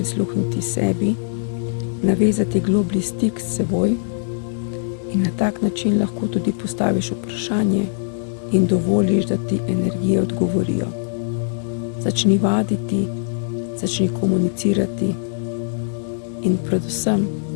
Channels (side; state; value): right; silent; digital silence